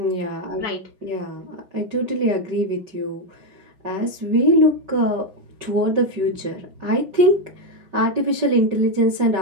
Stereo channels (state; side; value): late; left; 5.2 ms